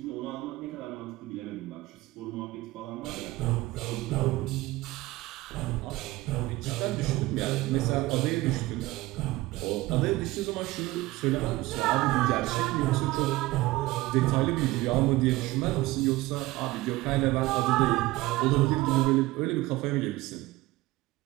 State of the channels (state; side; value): quieter; left; 19.0 dB